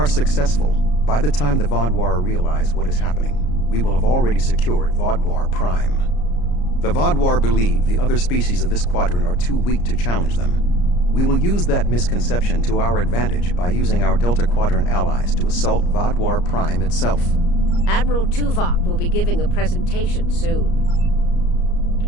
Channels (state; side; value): late; right; 34 ms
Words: successful, by the time the Vaadwaur realize what is happening, we will have already secured Vaadwaur Prime. The Vaadwaur believe the other species of this quadrant are too weak to challenge them. We will use that misconception to our advantage by using our Delta Quadrant allies to assault Vaadwaur Prime itself. Admiral Tuvok will be giving a presentation soon.